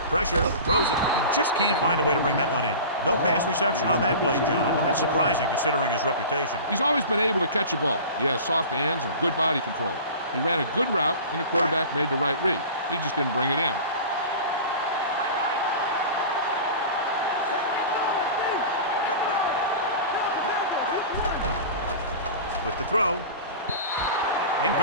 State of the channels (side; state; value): both; inverted; correlation -0.36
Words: Pressure. Throws it. He just can't find a way to bring that one in. No pass reception on that play, John, and that's surprising considering his reputation. He's always been able to catch a ball. He has soft hands and good body control. He ran a good route, and the quarterback made the right read. He just didn't bring it in. With the throw.